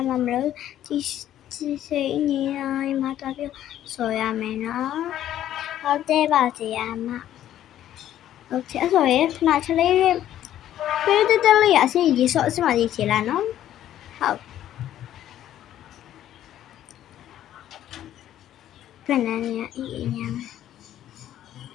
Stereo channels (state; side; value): quieter; right; 11.9 dB